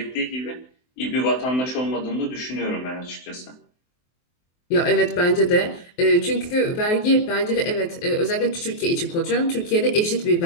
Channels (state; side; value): late; right; 23 ms